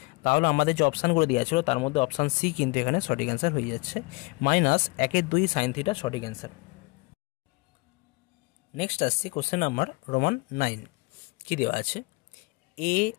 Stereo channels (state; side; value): quieter; right; 26.5 dB